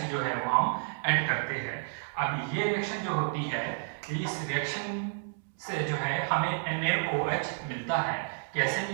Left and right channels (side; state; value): left; silent; 57 dB below the other